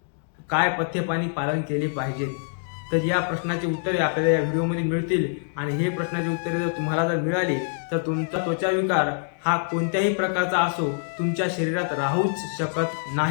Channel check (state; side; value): silent; right; digital silence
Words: काय पथ्यपाणी पालन केले पाहिजे। तर या प्रश्नाची उत्तरे आपल्याला या व्हिडिओमध्ये मिळतील आणि हे प्रश्नाची उत्तरे जर तुम्हाला जर मिळाली तर तुमचा त्वचा विकार हा कोणत्याही प्रकारचा असो तुमच्या शरीरात राहूच शकत